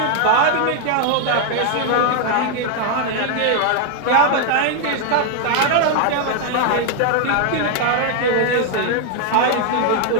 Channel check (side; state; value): both; different; correlation 0.00